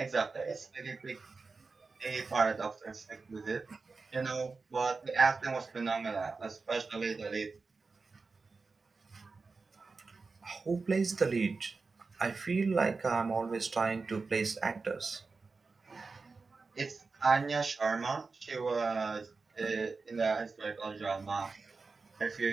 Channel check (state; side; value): quieter; left; 4.2 dB